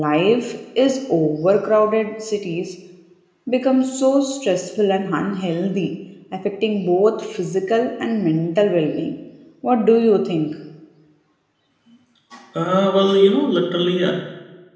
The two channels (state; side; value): identical; both; correlation 1.00